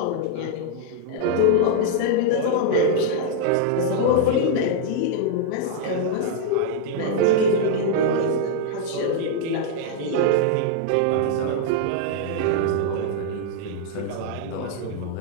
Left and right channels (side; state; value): both; different; correlation -0.01